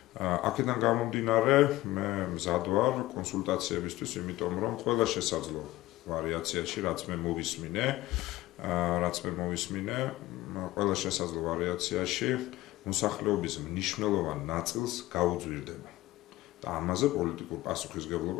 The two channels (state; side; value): quieter; right; 17.2 dB